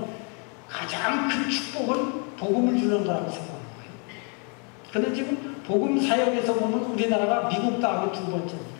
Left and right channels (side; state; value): right; quieter; 37.1 dB